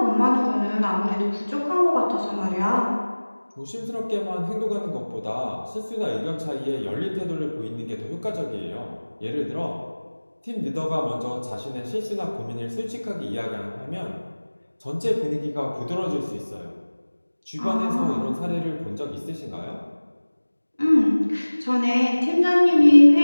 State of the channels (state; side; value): inverted; both; correlation -1.00